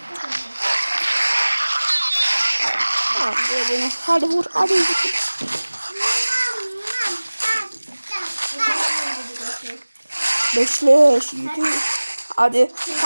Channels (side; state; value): both; inverted; correlation -1.00